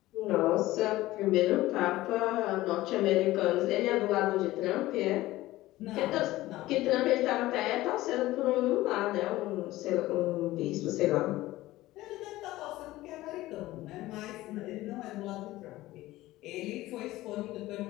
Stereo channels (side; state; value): right; quieter; 17.1 dB